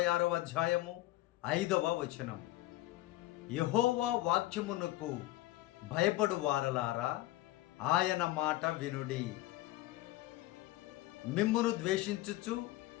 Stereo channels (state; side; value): quieter; right; 17.0 dB